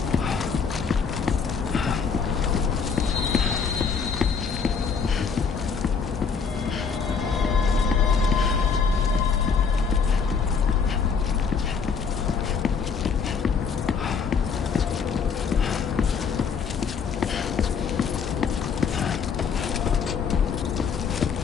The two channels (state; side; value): quieter; right; 5.9 dB